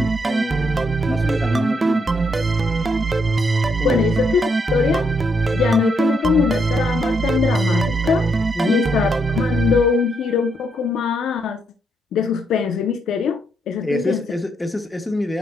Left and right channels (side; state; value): both; normal; correlation 0.76